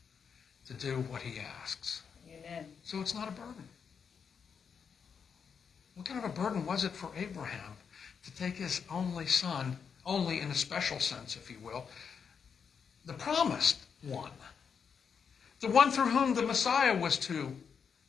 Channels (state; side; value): quieter; right; 6.5 dB